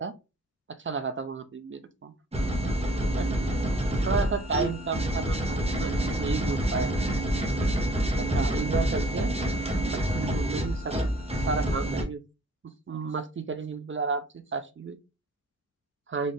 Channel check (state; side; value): normal; both; correlation 0.55